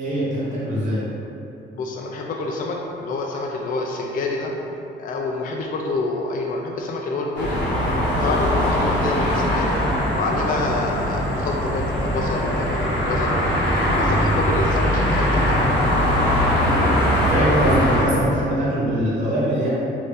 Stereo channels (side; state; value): both; normal; correlation 0.42